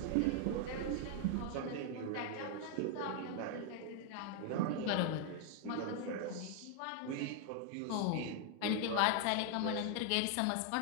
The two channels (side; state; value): both; different; correlation 0.00